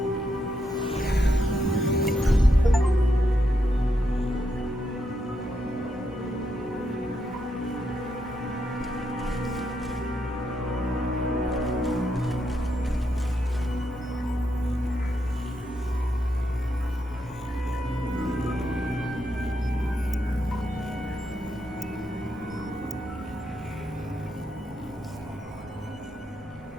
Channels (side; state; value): both; normal; correlation 0.81